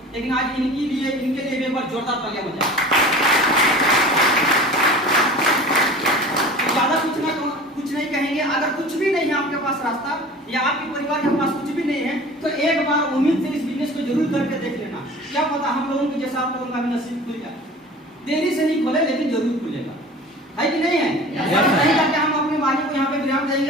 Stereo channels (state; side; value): normal; both; correlation 0.40